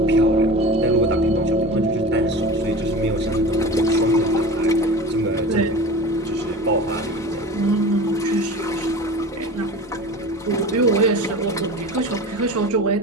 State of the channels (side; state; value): both; normal; correlation 0.34